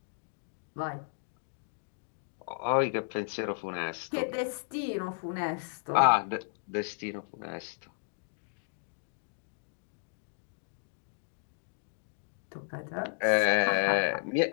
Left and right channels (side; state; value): right; silent; digital silence